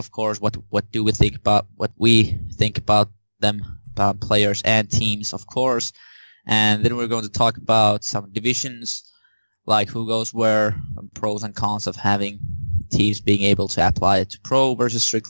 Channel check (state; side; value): inverted; both; correlation -1.00